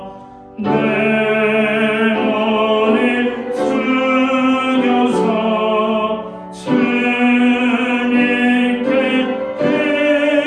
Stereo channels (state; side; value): identical; both; correlation 1.00